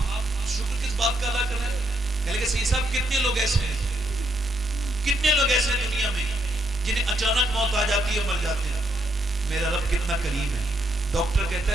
شکر کس بات کا ادا کر رہے ہیں؟ کہہ لگے صحیح صاحب کتنے لوگ ایسے ہیں, کتنے لوگ ایسے ہیں دنیا میں جنہیں اچانک موت آ جاتی ہے, مر جاتے ہیں. میرا رب کتنا کریم ہے. ڈاکٹر کہتا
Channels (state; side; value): normal; both; correlation 0.76